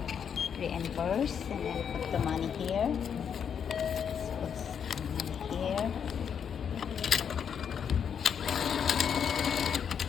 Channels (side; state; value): right; quieter; 7.6 dB